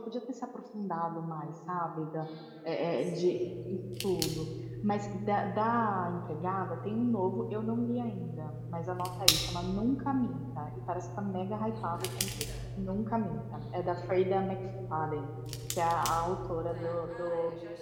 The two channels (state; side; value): identical; both; correlation 1.00